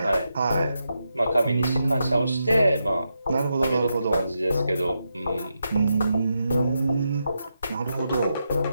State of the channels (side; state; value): both; inverted; correlation -0.85